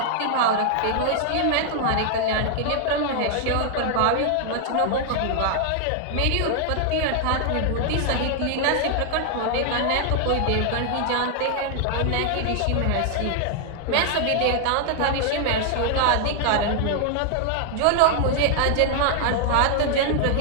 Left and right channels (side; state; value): both; different; correlation 0.00